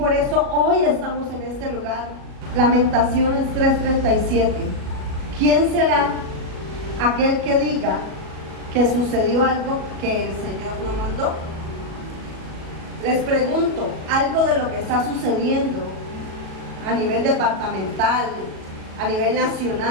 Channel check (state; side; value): late; left; 37 ms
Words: eso hoy estamos en este lugar. Lamentaciones 3:37. ¿Quién será aquel que diga que sucedió algo que el Señor no mandó? Les pregunto, algo de lo que está sucediendo a nivel departamental, a nivel